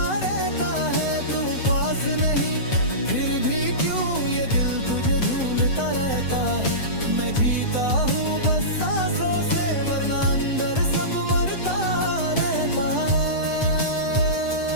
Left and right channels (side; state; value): right; late; 8.0 ms